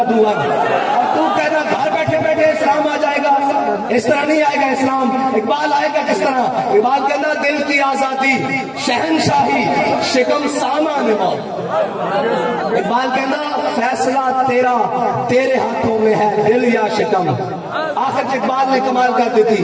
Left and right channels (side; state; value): both; identical; correlation 1.00